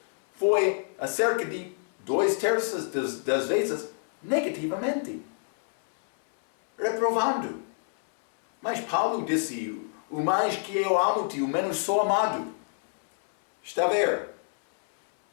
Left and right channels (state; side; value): silent; right; 60 dB below the other